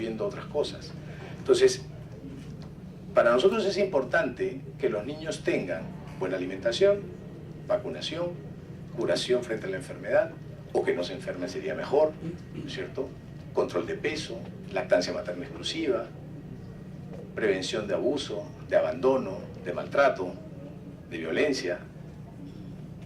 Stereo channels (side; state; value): both; identical; correlation 1.00